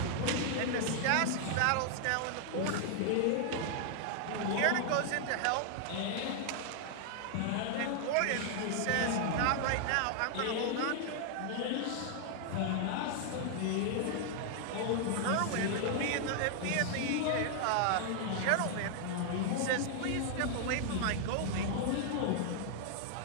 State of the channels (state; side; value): different; both; correlation 0.00